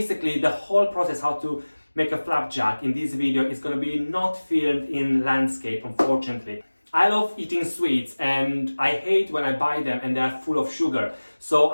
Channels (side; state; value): both; inverted; correlation -1.00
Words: the whole process how to make a flapjack in this video is gonna be not filmed in landscape, unfortunately. I love eating sweets and I hate when I buy them and they're full of sugar. So